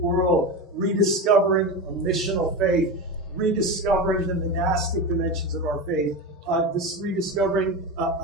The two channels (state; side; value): normal; both; correlation 0.21